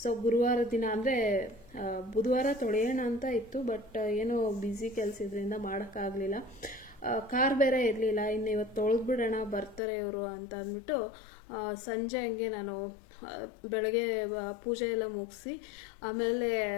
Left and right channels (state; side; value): drops out; right; at 9.8 s